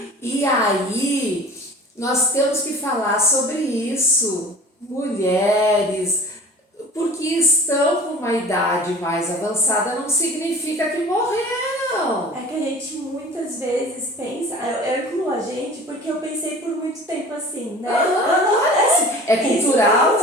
E aí, nós temos que falar sobre isso. Mulheres, porque estão com uma idade mais avançada, não significa que morreram. não. É que a gente muitas vezes pensa, eu incluo a gente porque eu pensei por muito tempo assim, né? É cultural,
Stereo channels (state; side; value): normal; both; correlation 0.42